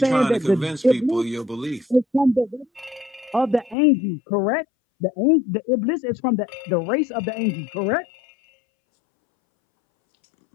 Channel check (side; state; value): right; drops out; at 3.8 s